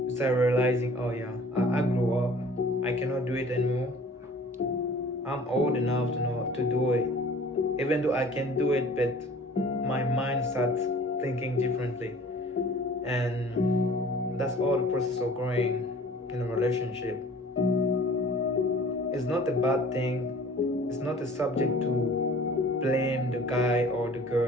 you start realizing, oh yeah, I grew up. I cannot do it anymore. I'm old enough to know to do it. Even though I can do it, but my mind starts thinking differently. And that's all the process of growing in a relationship. It's not a bad thing. It's not a subject to blame the guy or the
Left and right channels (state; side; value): normal; both; correlation 0.48